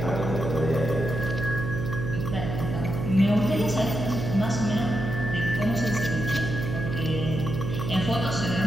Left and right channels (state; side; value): noise; right; hum, 4 dB below the sound